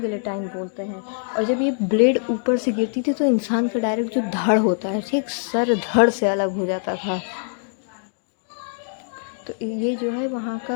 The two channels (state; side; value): silent; right; 63 dB below the other